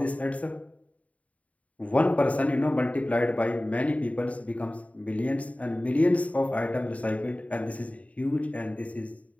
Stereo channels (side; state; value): right; late; 0.068 ms